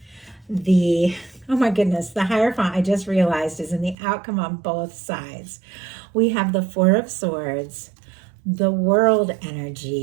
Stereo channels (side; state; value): left; drops out; at 4.0 s